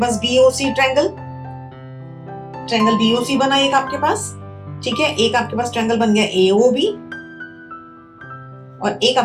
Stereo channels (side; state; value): both; identical; correlation 1.00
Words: BOC ट्रायंगल, ट्रायंगल BOC बना एक आपके पास, ठीक है। एक आपके पास ट्रायंगल बन गया AOB, और एक